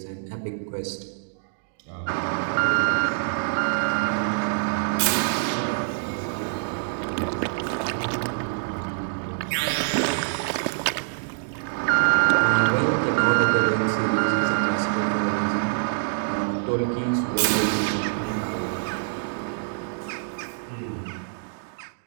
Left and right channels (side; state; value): left; silent; digital silence